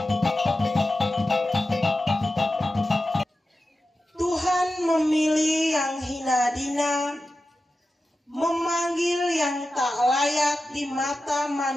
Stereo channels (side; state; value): both; normal; correlation 0.93